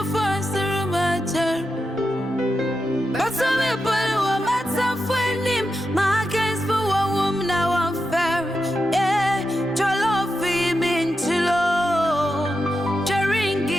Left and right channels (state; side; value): normal; both; correlation 0.88